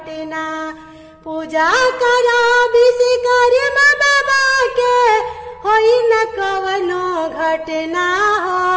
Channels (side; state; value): both; identical; correlation 1.00